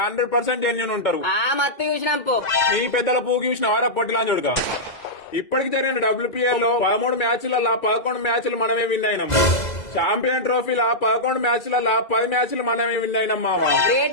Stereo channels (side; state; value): right; late; 2.0 ms